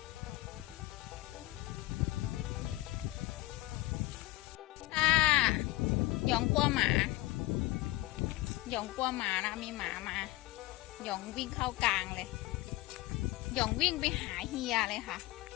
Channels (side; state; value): right; quieter; 19.1 dB